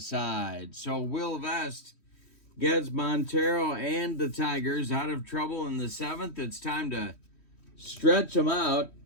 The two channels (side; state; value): right; late; 3.1 ms